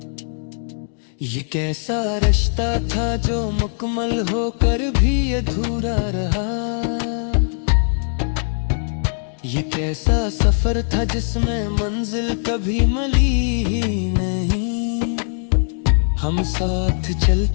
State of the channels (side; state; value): right; silent; digital silence